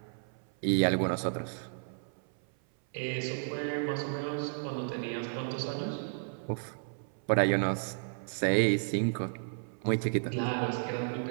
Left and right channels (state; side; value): silent; left; 56 dB below the other